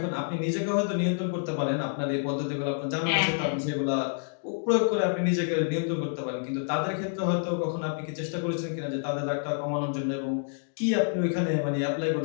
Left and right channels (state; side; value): silent; right; digital silence